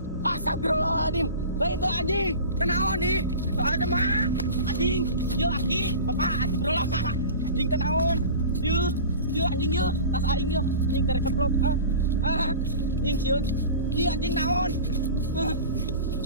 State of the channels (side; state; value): both; inverted; correlation -0.36